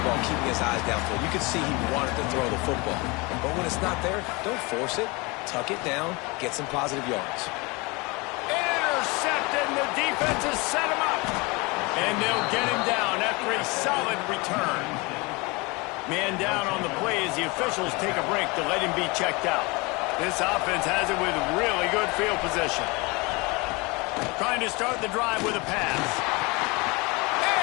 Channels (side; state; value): right; quieter; 26.4 dB